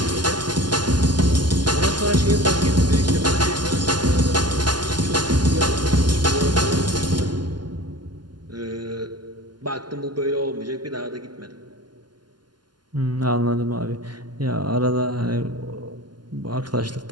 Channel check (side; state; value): left; late; 0.71 ms